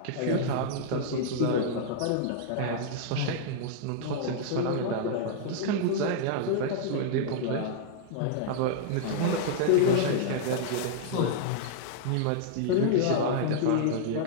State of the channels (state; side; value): different; both; correlation -0.01